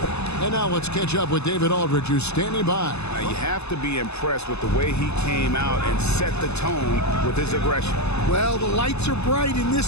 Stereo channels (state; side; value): late; right; 0.80 ms